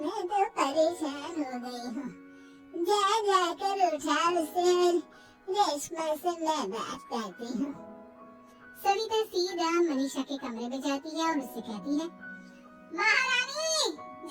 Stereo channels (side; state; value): both; identical; correlation 1.00